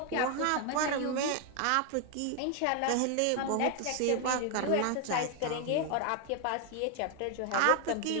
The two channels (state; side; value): different; both; correlation 0.01